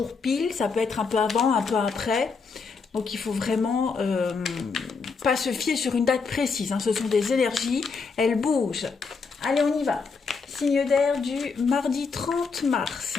pile, ça peut être un peu avant, un peu après. Donc il faut vraiment pas se fier sur une date précise, hein. Ce sont des énergies, elles bougent. Allez, on y va. Signe d'air du mardi 30 mars.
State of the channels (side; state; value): right; quieter; 4.9 dB